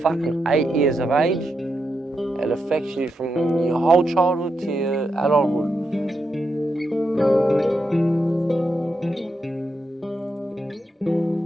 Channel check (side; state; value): both; normal; correlation 0.84